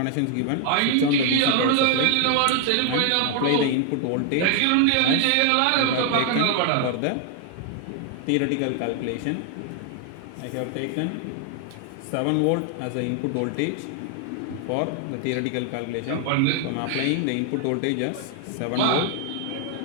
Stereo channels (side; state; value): both; different; correlation 0.00